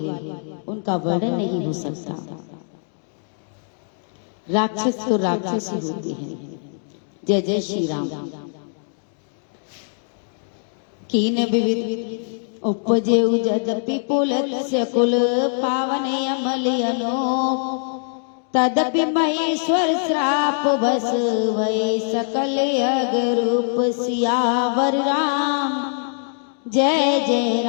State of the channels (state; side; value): silent; right; digital silence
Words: उनका वर्णन नहीं हो सकता। राक्षस तो राक्षस ही होते हैं। जय जय श्री राम। कीन विविध उपजेउ जदपि पुलत्स्य कुल पावने अमलयनो तदपि महेश्वर श्राप बस वै सकल अगरूप सियावर राम। जय जय